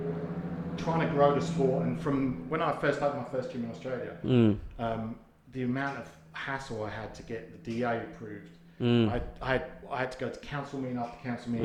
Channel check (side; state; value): both; identical; correlation 1.00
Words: trying to grow the sport, and from when I first opened my first gym in Australia, the amount of hassle I had to get the DA approved. I had to go to council meeting after council